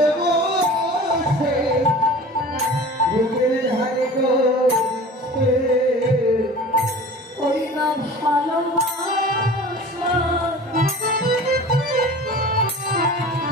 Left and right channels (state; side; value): normal; both; correlation 0.40